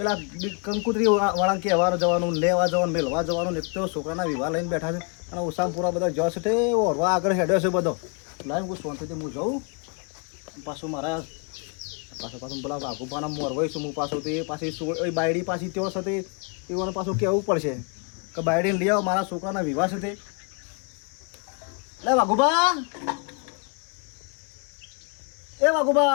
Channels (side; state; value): right; quieter; 36.3 dB